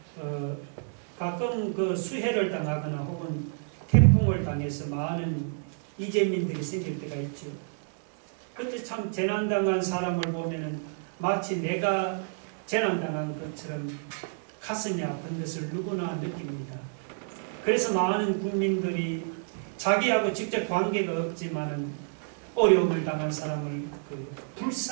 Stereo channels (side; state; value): left; silent; digital silence